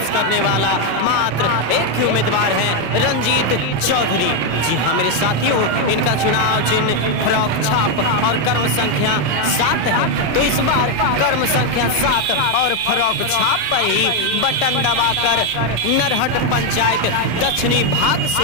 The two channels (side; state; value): left; late; 27 ms